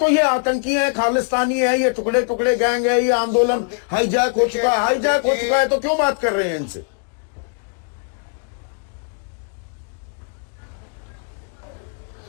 ये आतंकी है, खालिस्तानी है, ये टुकड़े टुकड़े गैंग है, ये आंदोलन हाईजैक हो चुका है। हाईजैक हो चुका है तो क्यों बात कर रहे हैं इनसे?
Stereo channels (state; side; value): quieter; right; 39.5 dB